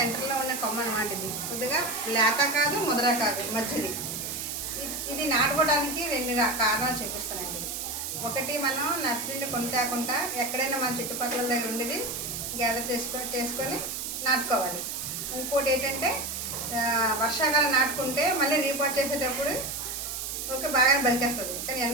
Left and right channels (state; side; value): noise; right; hiss, 5 dB below the sound